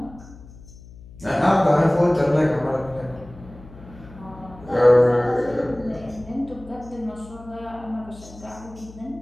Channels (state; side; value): noise; left; hum, 19 dB below the sound